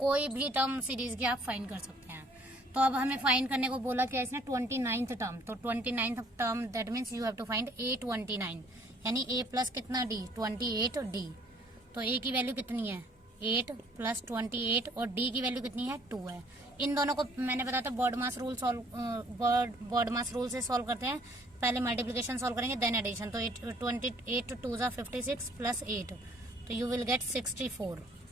भी टर्म सीरीज की आप फाइंड कर सकते हैं। तो अब हमें फाइंड करने को बोला क्या इसने 29th टर्म, तो 29th term that means you have to find A29, यानी A प्लस कितना D 28D। तो A की वैल्यू कितनी है 8 प्लस 28 और D की वैल्यू कितनी है 2 है। इन दोनों को मैंने बताया था बॉड मास रूल से सॉल्व करते हैं। पहले मल्टीप्लिकेशन सॉल्व करेंगे देन एडिशन। तो 28 2 ज़ा 56 प्लस 8, तो यू विल गेट 64।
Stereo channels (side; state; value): both; normal; correlation 0.60